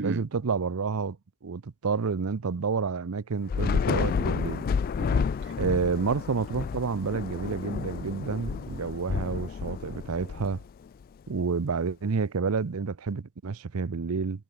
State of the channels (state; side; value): normal; both; correlation 0.22